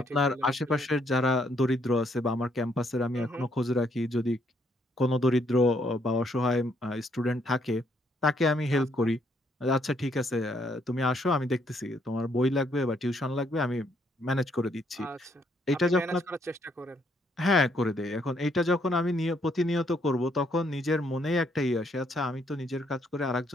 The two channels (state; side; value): normal; both; correlation 0.71